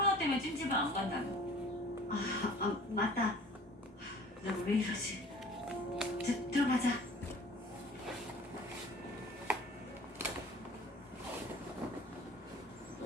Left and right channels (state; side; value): normal; both; correlation 0.47